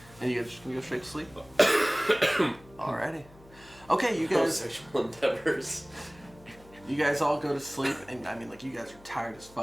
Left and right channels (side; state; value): left; noise; hum, 24 dB below the sound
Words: And you guys just gonna go straight to sleep? Alrighty. Okay, you No guys sexual endeavors. You guys all go to sleep, and I mean, like, you guys are tired as